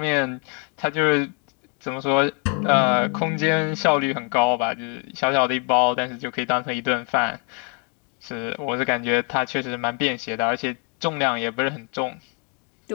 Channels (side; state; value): right; quieter; 36.5 dB